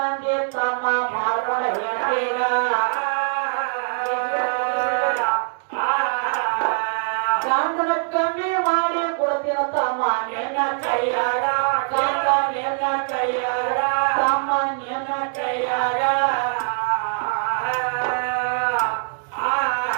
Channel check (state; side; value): silent; left; digital silence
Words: ತಮ್ಮ ಮಾಡ್ಕೊಂಡ ಹೇಳ್ತೀಗ ಗಂಡನ ಕಮ್ಮಿ ಮಾಡಿ ಕೊಡ್ತೀನ ತಮ್ಮ ನಿನ್ನ ಕೈಯಾಗ ಗಂಡ ನಿನ್ನ ಕೈಯಾಗ ತಮ್ಮ ನಿನ್ನ ಕೈಯಾಗ